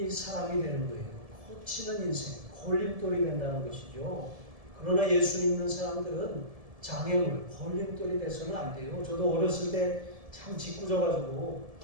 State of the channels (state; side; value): late; left; 1.7 ms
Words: 사람이 되는 거예요. 거치는 인생, 걸림돌이 된다는 것이죠. 그러나 예수 믿는 사람들은 장애물, 걸림돌이 돼서는 안 돼요. 저도 어렸을 때 참 짓궂어가지고